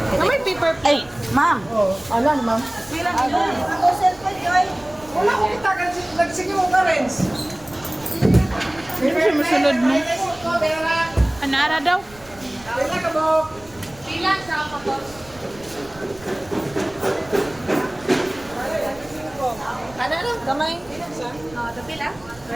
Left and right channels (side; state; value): right; noise; rumble, 23 dB below the sound